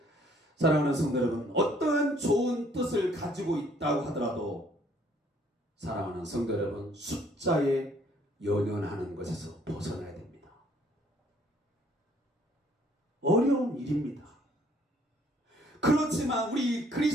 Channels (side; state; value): both; normal; correlation 0.62